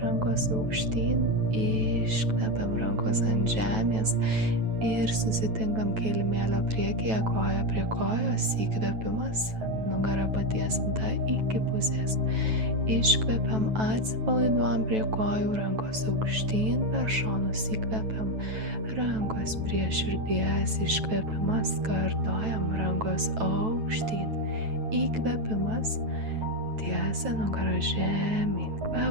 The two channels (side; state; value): left; late; 9.2 ms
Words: rankos aukštyn, iškvėpiam, rankos ant žemės. Ir susitinkam kilimėlio priekyje, koja prie kojos, įkvėpimas, nugara patiesinta iki pusės. Iškvėpiam, atsipalaiduojam prie kojų, rankos aukštyn, per šonus įkvėpiam, rankos prie širdies, iškvėpimas, kartojam, rankos aukštyn, įkvėpimas, tiesia nugara žemyn,